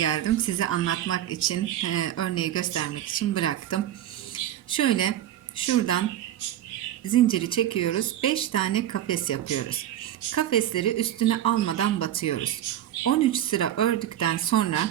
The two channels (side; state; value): left; quieter; 12.0 dB